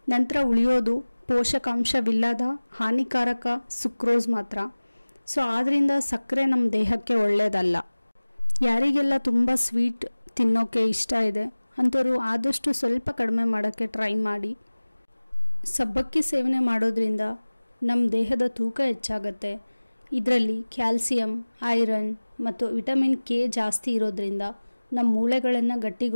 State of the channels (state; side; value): inverted; both; correlation -1.00